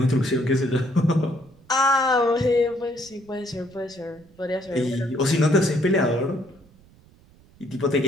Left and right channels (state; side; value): noise; right; rumble, 28 dB below the sound